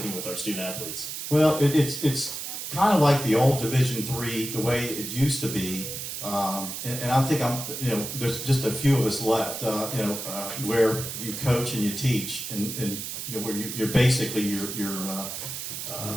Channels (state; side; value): noise; right; hiss, 6 dB below the sound